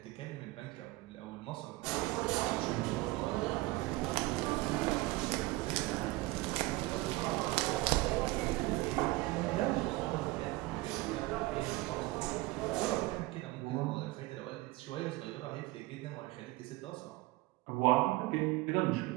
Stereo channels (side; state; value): left; quieter; 20.7 dB